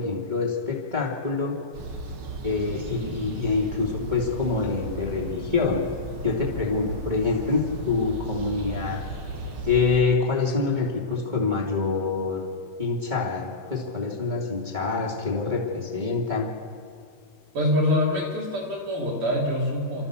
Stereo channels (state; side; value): quieter; right; 3.0 dB